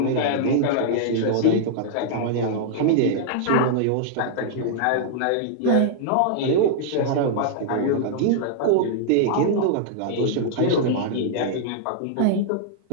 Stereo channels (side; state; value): both; different; correlation -0.01